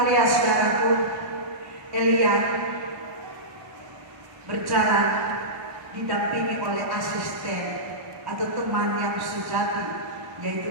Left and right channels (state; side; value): late; left; 1.1 ms